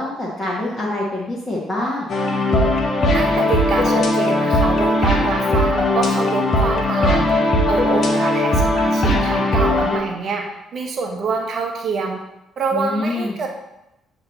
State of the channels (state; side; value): normal; both; correlation 0.66